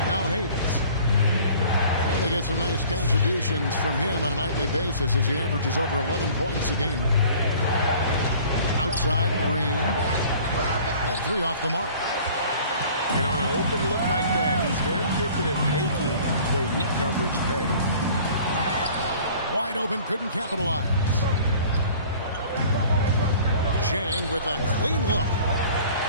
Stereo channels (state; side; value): inverted; both; correlation -0.49